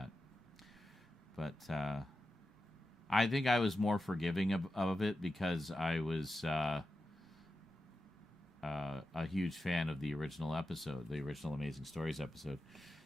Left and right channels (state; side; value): normal; both; correlation 0.91